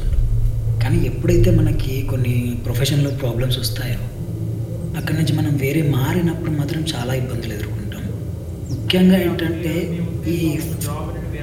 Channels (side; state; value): both; identical; correlation 1.00